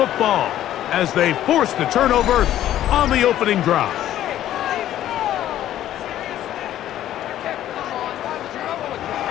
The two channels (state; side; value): quieter; right; 12.5 dB